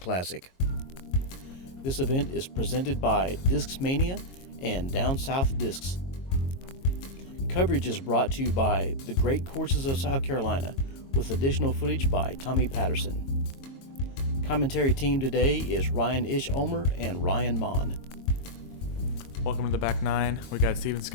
This event is presented by Discmania and Down South Discs. Coverage is brought to you by the Great Courses of South Carolina, with additional footage by Tommy Patterson. Commentary team today is Ryan Ulmer and Ryan Monn. Welcome to the Back 9. We got Steven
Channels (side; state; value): right; late; 22 ms